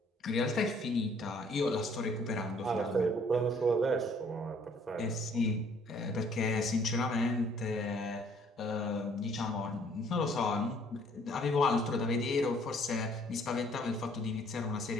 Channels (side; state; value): both; normal; correlation 0.60